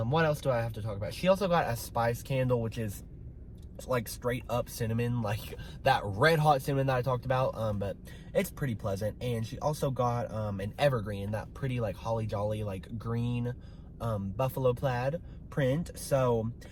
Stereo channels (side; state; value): both; identical; correlation 1.00